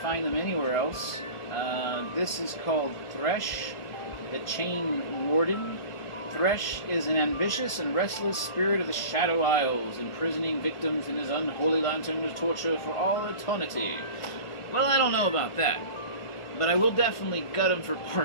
them anywhere else. This is called Thresh, the Chain Warden. Thresh is an ambitious and restless spirit of the Shadow Isles, imprisoning victims in his unholy lantern to torture for all eternity. Well, I don't know about that, but I will definitely gut him for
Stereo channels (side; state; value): right; late; 1.4 ms